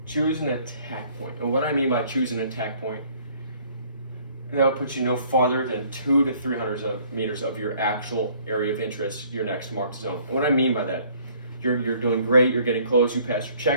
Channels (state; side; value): inverted; both; correlation -0.59